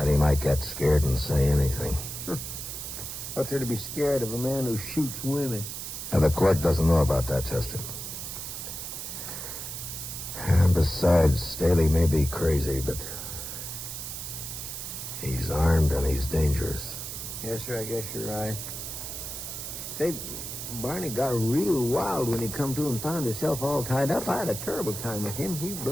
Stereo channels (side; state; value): right; noise; hiss, 7 dB below the sound